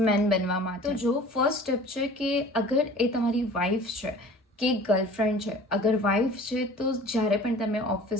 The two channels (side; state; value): both; normal; correlation 0.45